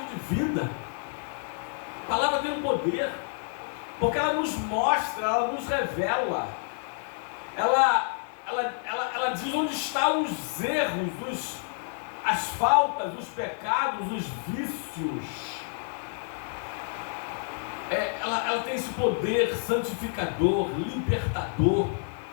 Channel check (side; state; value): right; silent; 59 dB below the other